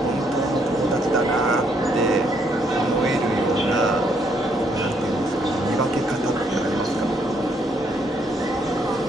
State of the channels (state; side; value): normal; both; correlation 0.71